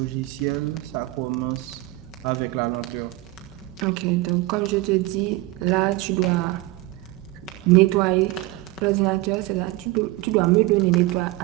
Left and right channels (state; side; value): quieter; left; 19.0 dB